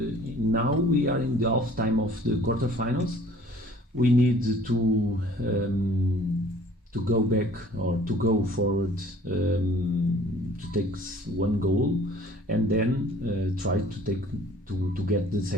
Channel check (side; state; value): both; normal; correlation 0.53